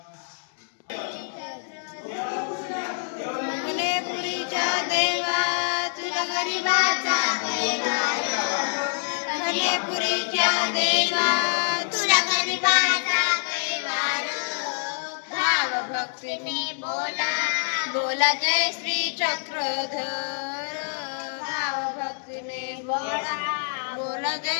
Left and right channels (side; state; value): right; silent; digital silence